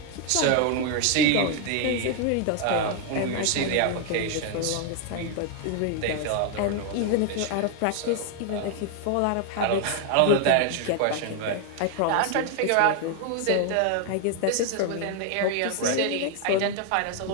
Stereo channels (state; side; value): different; both; correlation 0.00